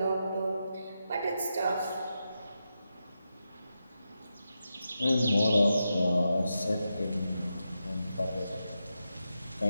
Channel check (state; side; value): inverted; both; correlation -0.88